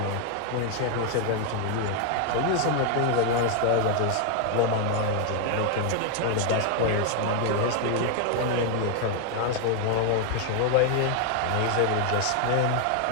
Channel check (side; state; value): both; different; correlation 0.00